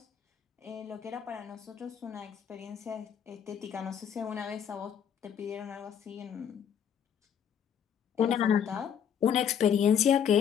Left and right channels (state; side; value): quieter; right; 8.4 dB